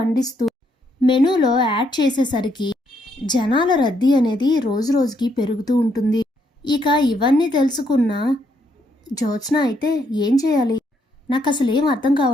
మెనూలో యాడ్ చేసేసరికి జనాల రద్దీ అనేది రోజు రోజుకి పెరుగుతూ ఉంటుంది. ఇక ఇవన్నీ తెలుసుకున్న జ్యోత్స్న అయితే ఏం చేయాలి, నాకు అసలు ఏం అర్థం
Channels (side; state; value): both; normal; correlation 0.74